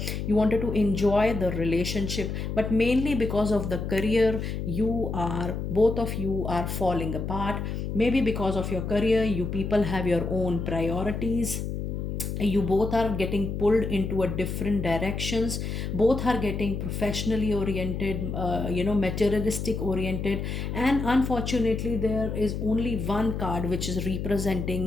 you wanted to enjoy the relationship, but mainly because of the career, both of you are falling apart. Maybe because of your career, you people have your own priorities, you both are getting pulled into a different directions, both are getting professionally oriented, materialistic oriented. And unfortunately there is only one card which is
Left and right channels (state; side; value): noise; left; hum, 4 dB below the sound